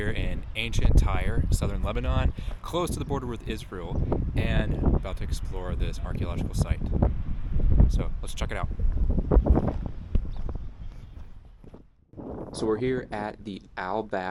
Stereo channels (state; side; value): identical; both; correlation 1.00